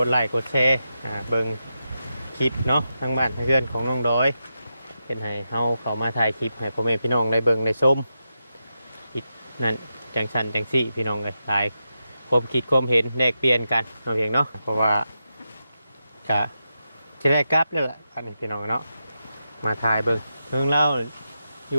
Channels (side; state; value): both; inverted; correlation -0.88